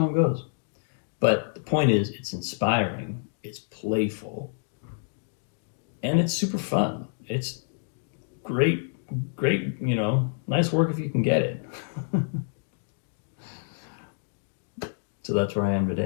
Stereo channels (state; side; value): silent; right; digital silence